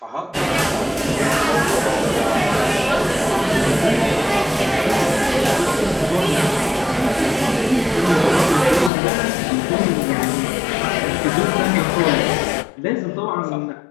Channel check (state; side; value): drops out; right; at 8.9 s